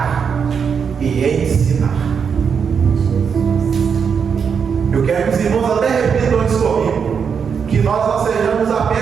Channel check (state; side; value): quieter; left; 6.6 dB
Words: e ensinar. Eu quero que os irmãos até repitam isso comigo, que nós não sejamos